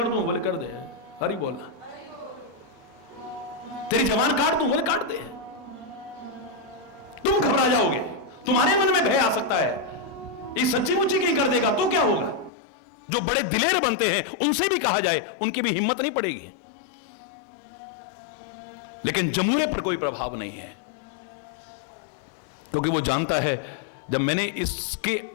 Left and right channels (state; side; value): drops out; right; at 12.5 s